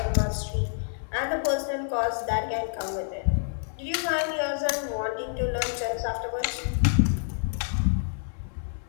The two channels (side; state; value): right; silent; 59 dB below the other